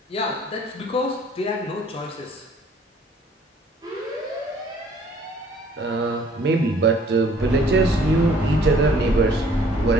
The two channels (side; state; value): both; normal; correlation 0.57